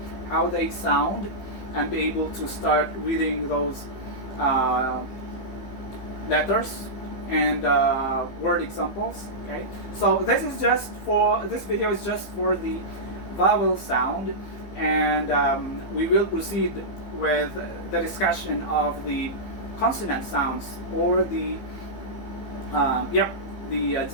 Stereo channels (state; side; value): late; right; 15 ms